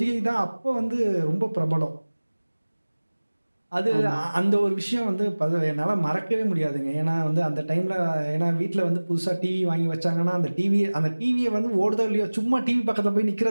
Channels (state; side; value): inverted; both; correlation -1.00